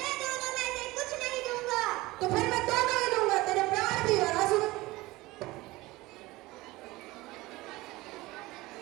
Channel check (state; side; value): quieter; left; 20.0 dB